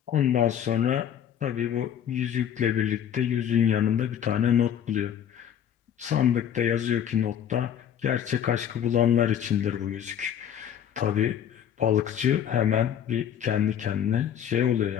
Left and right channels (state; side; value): quieter; right; 9.4 dB